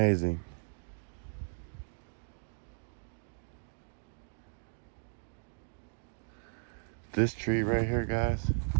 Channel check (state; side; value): silent; left; digital silence